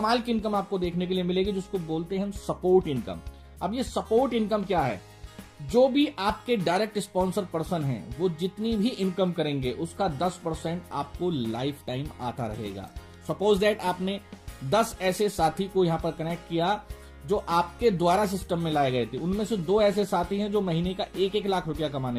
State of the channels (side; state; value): both; identical; correlation 1.00